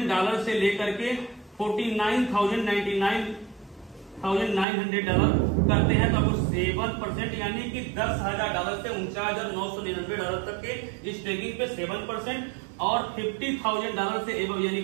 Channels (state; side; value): drops out; left; at 4.7 s